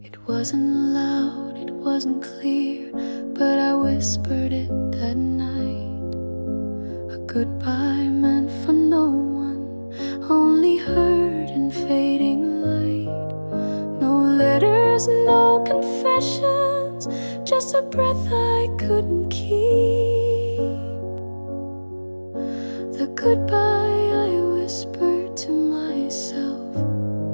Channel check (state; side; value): inverted; both; correlation -1.00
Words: It wasn't loud, it wasn't clear, but I whispered it that night. A goodbye meant for no one, only heard in fading light. No letters, no confessions, just a breath I couldn't keep. The goodbye I whispered to myself